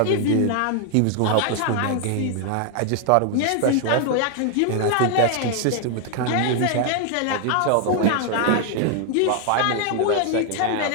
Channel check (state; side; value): different; both; correlation 0.00